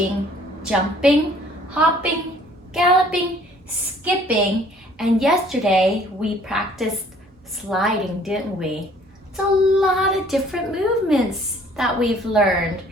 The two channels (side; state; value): both; normal; correlation 0.57